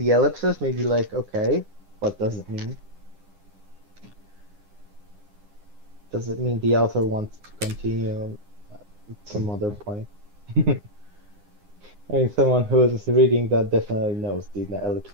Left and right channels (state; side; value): late; left; 10 ms